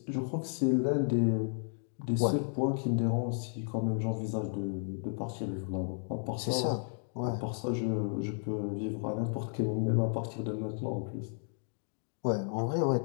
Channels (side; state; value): right; silent; 56 dB below the other